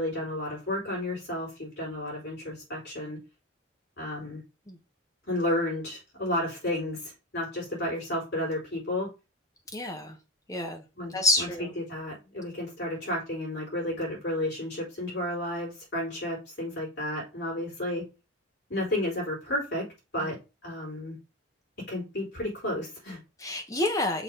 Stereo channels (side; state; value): both; normal; correlation 0.13